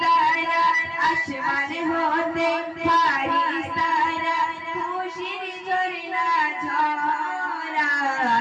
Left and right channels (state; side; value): identical; both; correlation 1.00